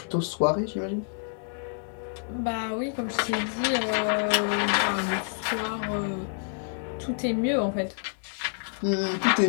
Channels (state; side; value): silent; right; digital silence